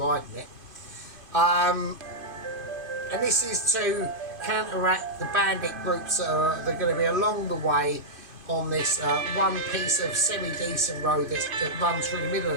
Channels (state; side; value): late; left; 2.5 ms